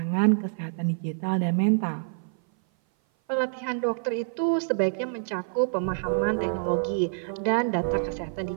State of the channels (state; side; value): silent; left; 57 dB below the other